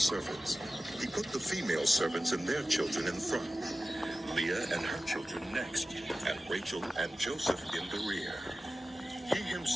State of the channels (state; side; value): normal; both; correlation 0.95